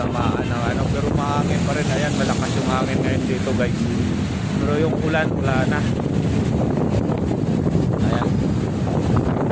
ng pero mahangin pa rin. Ayan, malakas yung hangin ngayon dito guys. Pero yung ulan, wala na. Ayan.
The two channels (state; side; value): identical; both; correlation 1.00